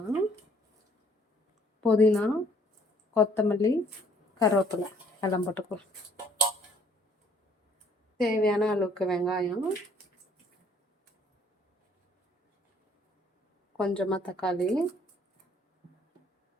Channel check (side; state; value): both; normal; correlation 0.61